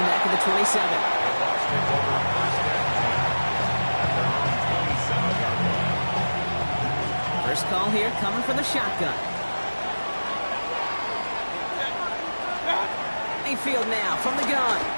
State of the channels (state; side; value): inverted; both; correlation -1.00